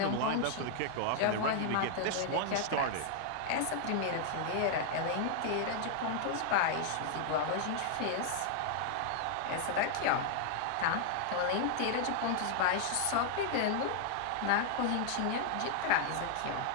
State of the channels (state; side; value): different; both; correlation -0.01